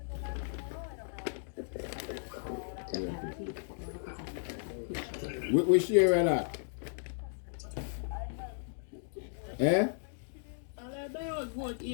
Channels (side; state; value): right; silent; digital silence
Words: Which area that? Eh? I vote